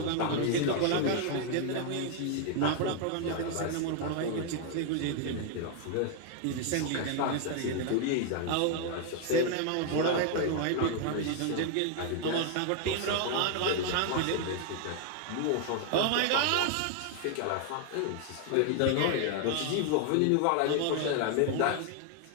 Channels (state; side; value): different; both; correlation 0.00